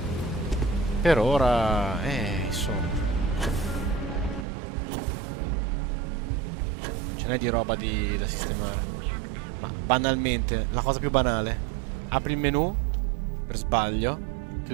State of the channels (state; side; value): drops out; left; at 4.5 s